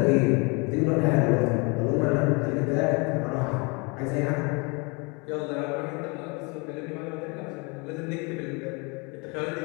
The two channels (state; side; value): quieter; right; 30.5 dB